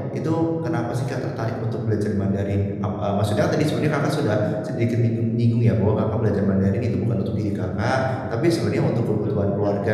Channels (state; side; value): identical; both; correlation 1.00